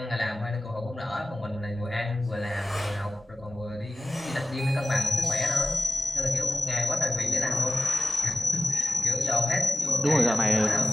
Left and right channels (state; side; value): normal; both; correlation 0.96